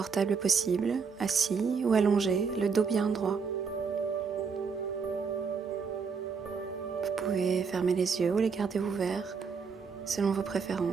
possible, assis ou allongé, le dos bien droit. Vous pouvez fermer les yeux ou les garder ouverts selon vos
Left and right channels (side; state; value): left; quieter; 5.6 dB